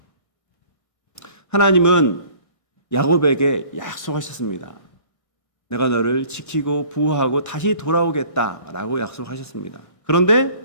하나님은 야곱에게 약속하셨습니다. 내가 너를 지키고 보호하고 다시 돌아오겠다라고 약속하셨습니다. 그런데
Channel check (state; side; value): late; right; 1.6 ms